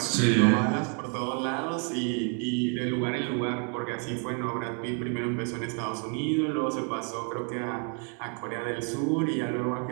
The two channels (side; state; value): left; quieter; 39.0 dB